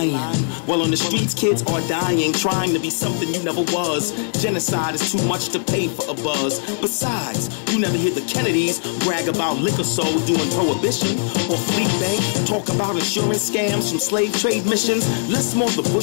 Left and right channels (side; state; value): right; silent; digital silence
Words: While on the streets, kids are dying, trying to be something you never was. Genocide is too much to pay for a buzz. Besides, you never hear the Kennedys brag about liquor sold during Prohibition, or Fleet Bank talk about insurance scams from slave trade missions. Less more the